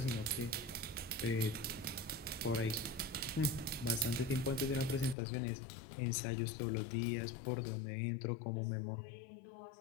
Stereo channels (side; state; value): right; drops out; at 5.2 s